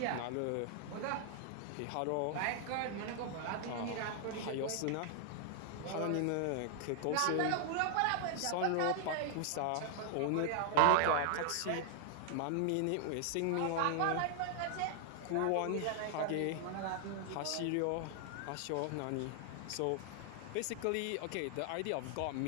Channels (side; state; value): both; different; correlation 0.00